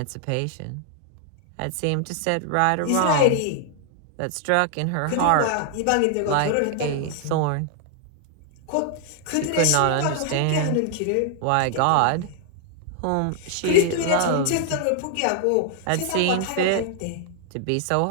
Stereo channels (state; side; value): different; both; correlation 0.00